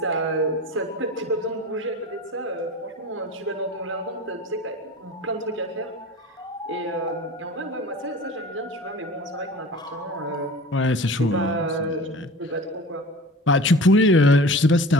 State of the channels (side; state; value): both; normal; correlation 0.39